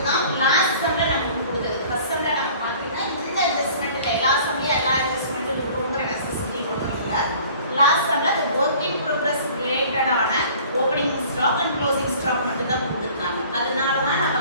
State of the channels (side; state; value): both; inverted; correlation -0.49